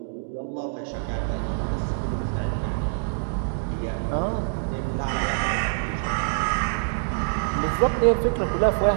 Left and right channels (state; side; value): silent; left; digital silence